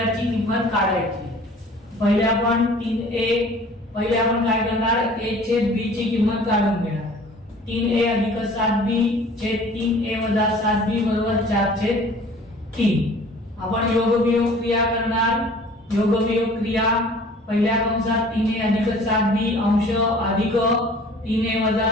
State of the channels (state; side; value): normal; both; correlation 0.49